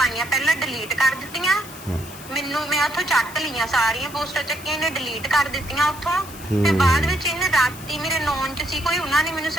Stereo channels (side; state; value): left; noise; hiss, 16 dB below the sound